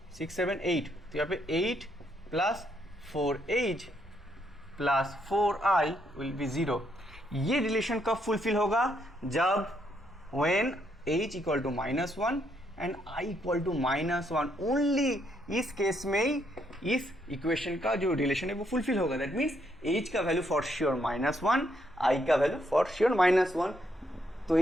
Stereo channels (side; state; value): both; normal; correlation 0.74